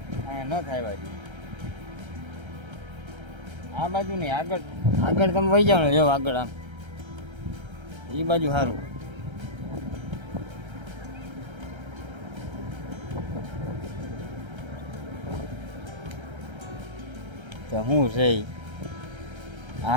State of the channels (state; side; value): late; left; 1.3 ms